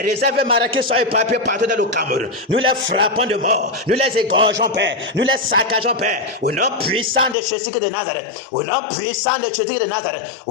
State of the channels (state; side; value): drops out; right; at 7.4 s